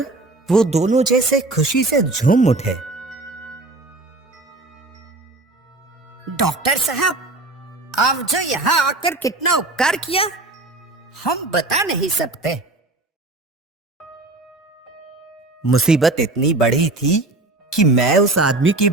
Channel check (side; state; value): left; quieter; 3.0 dB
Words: वो दोनों जैसे खुशी से झूम उठे। डॉक्टर साहब, आप जो यहाँ आकर कितना उपकार किया, हम बता नहीं सकते। मुसीबत इतनी बड़ी थी कि मैं उस आदमी के